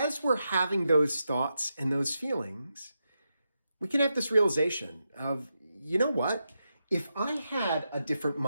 we're having those thoughts and those feelings, we can have this realization of, you know what? If I had a different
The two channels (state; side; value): inverted; both; correlation -0.87